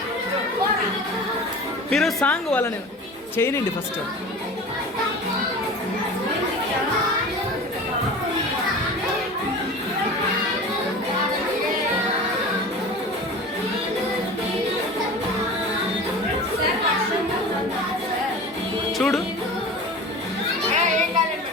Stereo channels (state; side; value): normal; both; correlation 0.35